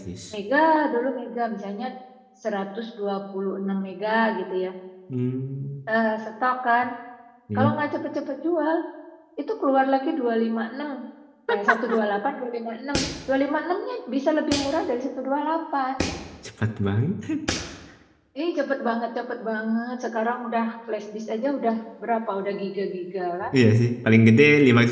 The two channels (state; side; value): identical; both; correlation 1.00